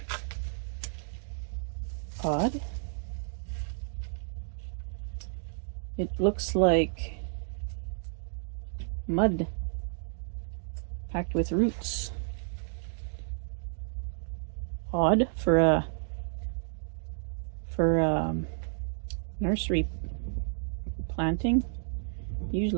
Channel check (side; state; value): left; silent; digital silence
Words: Odd. It looks like mud packed with roots. Odd for a nursery planting.